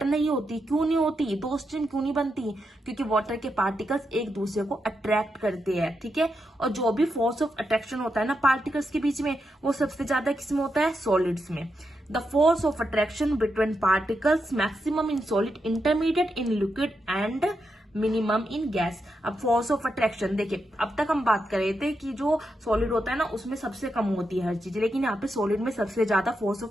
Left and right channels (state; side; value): normal; both; correlation 0.85